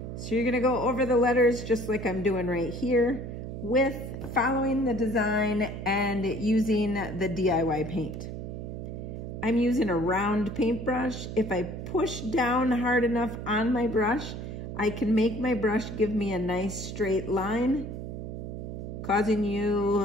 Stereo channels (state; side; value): noise; right; hum, 7 dB below the sound